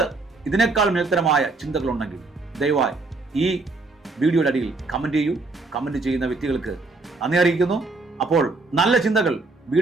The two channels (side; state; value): left; quieter; 3.5 dB